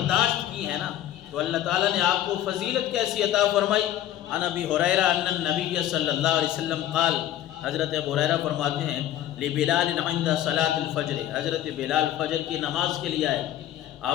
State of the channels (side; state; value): right; quieter; 12.3 dB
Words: کی ہے نا، تو اللہ تعالیٰ نے آپ کو فضیلت کیسی عطا فرمائی۔ عن ابی ہریرہ ان النبی صلی اللہ علیہ وسلم قال، حضرت ابو ہریرہ فرماتے ہیں لبلال عند صلاۃ الفجر، حضرت بلال فجر کی نماز کے لیے آئے،